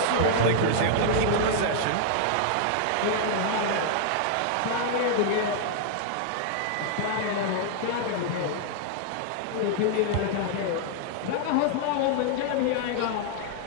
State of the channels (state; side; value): different; both; correlation -0.01